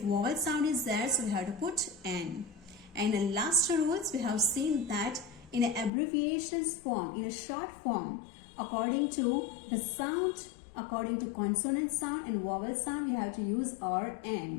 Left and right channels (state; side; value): drops out; right; at 5.9 s